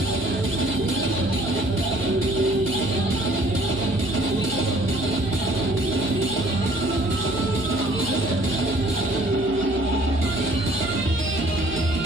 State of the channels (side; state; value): right; noise; hum, 13 dB below the sound